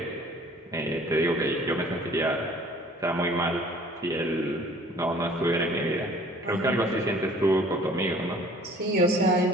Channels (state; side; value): normal; both; correlation 0.52